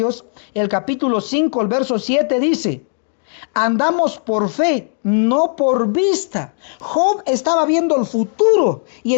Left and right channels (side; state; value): right; silent; 62 dB below the other